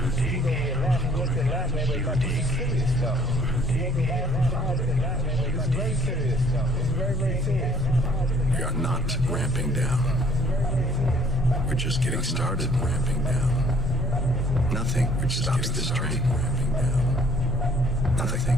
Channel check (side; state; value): both; normal; correlation 0.59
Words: dig. You dig. We are not ramping down. We're just getting started ramping down. Nothing which stops this train ramping down. Nothing